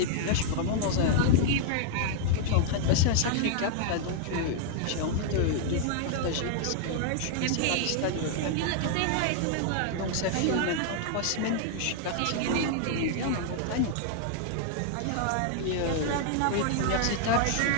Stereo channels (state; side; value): different; both; correlation 0.00